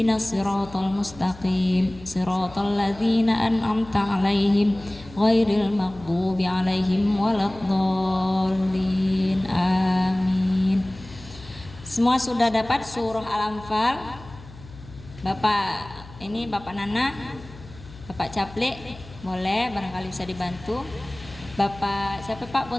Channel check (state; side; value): noise; left; hum, 18 dB below the sound